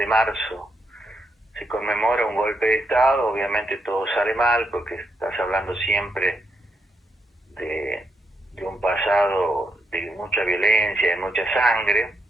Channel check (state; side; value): normal; both; correlation 0.80